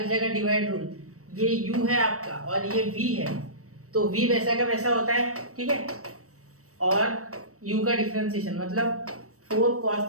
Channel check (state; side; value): late; left; 0.65 ms